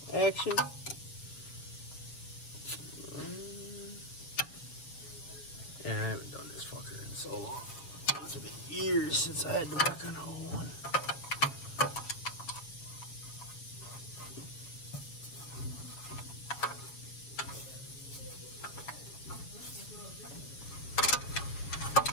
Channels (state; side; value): late; right; 7.2 ms